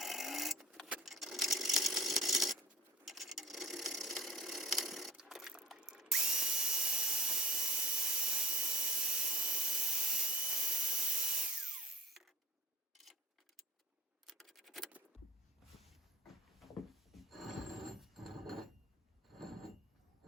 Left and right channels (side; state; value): both; normal; correlation 0.42